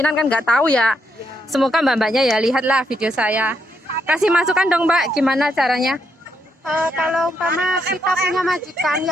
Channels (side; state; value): both; normal; correlation 0.78